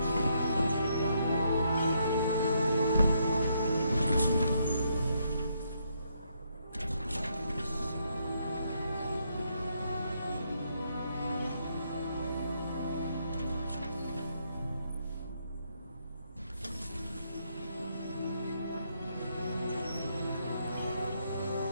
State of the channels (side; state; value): both; inverted; correlation -0.75